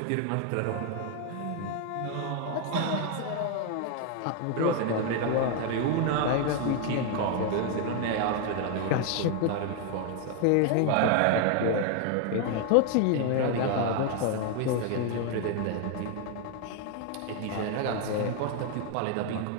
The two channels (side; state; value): both; different; correlation 0.00